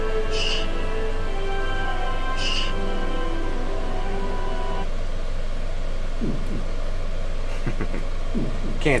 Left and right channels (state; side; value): identical; both; correlation 1.00